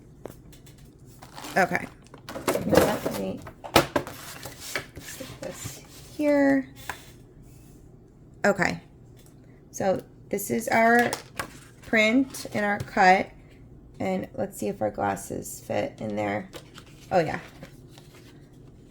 Okay. Let me stick this here. Okay. So this is our print and our cut. And let's see if our glasses fit in there. Oh yeah.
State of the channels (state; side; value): identical; both; correlation 1.00